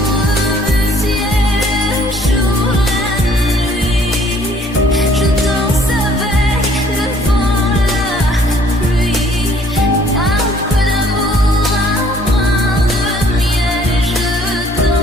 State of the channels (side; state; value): both; normal; correlation 0.59